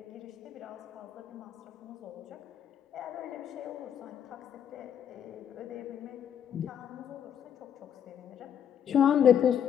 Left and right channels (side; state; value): right; quieter; 9.0 dB